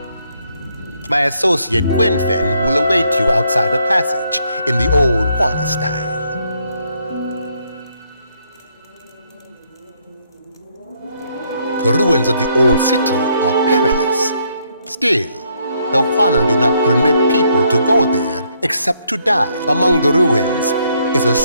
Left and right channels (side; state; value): both; inverted; correlation -0.72